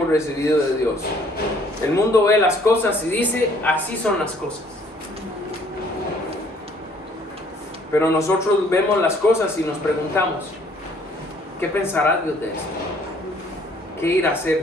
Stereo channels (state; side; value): normal; both; correlation 0.60